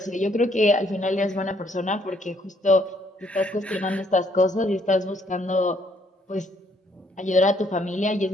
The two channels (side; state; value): both; normal; correlation 0.67